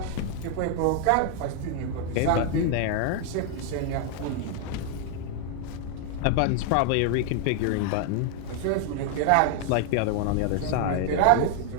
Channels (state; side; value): different; both; correlation 0.00